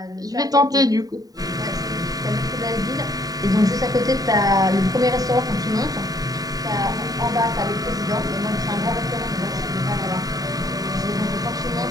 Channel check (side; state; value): left; late; 0.18 ms